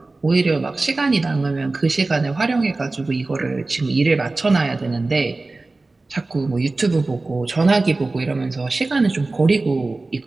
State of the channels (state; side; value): quieter; left; 3.3 dB